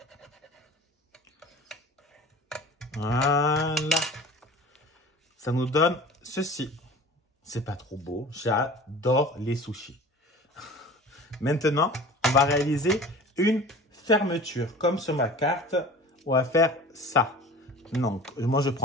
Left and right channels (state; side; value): normal; both; correlation 0.40